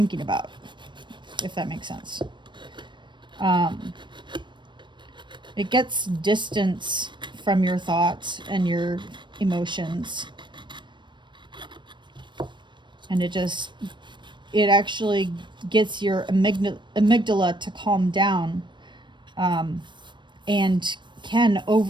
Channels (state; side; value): late; left; 0.22 ms